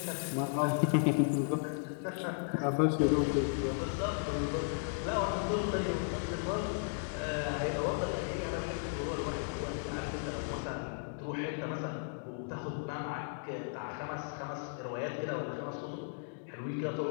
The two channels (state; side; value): silent; right; digital silence